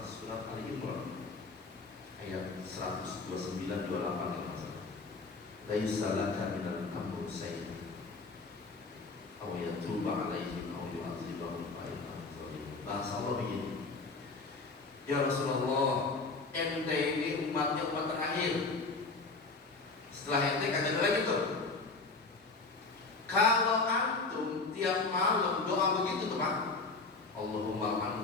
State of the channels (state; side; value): quieter; right; 3.9 dB